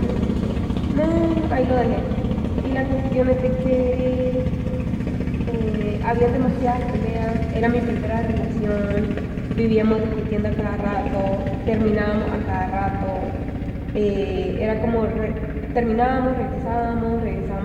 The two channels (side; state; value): both; identical; correlation 1.00